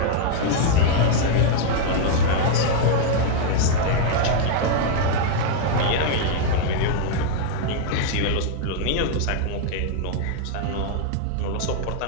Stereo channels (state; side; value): different; both; correlation 0.00